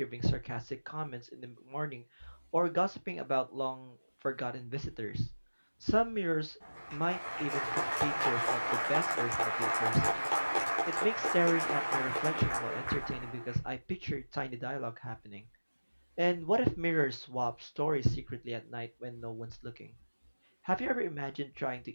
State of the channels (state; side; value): inverted; both; correlation -1.00